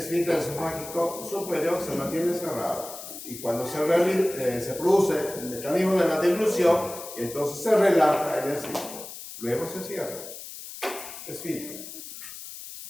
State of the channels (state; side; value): noise; left; hiss, 12 dB below the sound